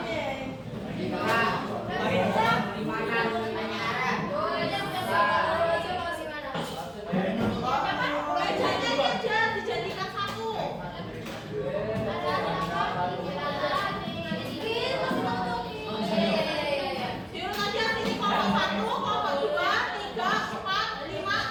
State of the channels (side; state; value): both; identical; correlation 1.00